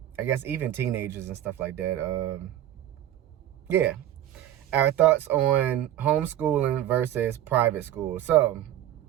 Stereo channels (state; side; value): quieter; left; 12.3 dB